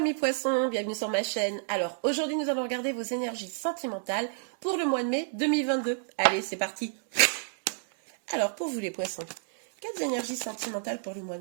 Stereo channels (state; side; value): silent; left; digital silence